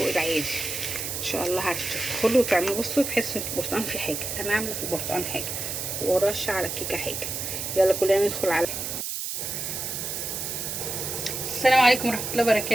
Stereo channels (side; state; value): right; noise; hiss, 4 dB below the sound